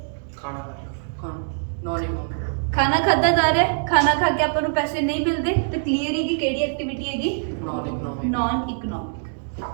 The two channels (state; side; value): silent; left; digital silence